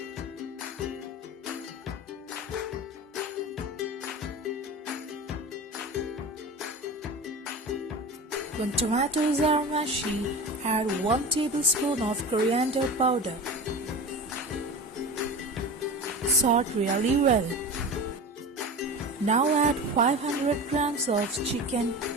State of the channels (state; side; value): normal; both; correlation 0.31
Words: When tomatoes are mushy, add 1 tablespoon of coriander powder. Salt really well. Now add 500 grams of chicken.